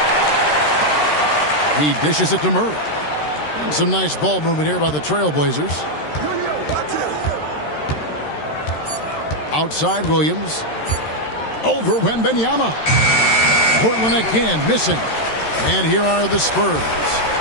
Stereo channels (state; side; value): late; right; 13 ms